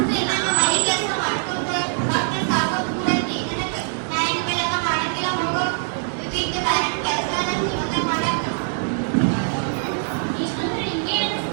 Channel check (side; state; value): left; silent; 60 dB below the other